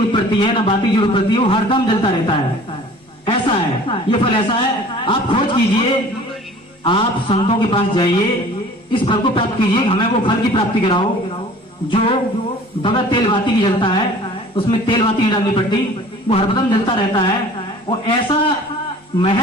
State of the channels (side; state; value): both; normal; correlation 0.47